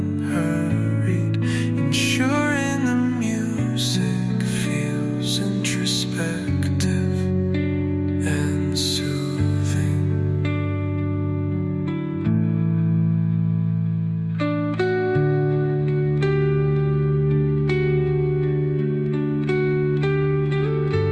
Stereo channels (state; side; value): identical; both; correlation 1.00